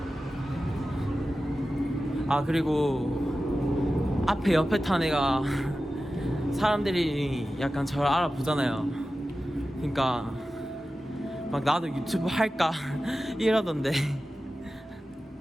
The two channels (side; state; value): both; normal; correlation 0.94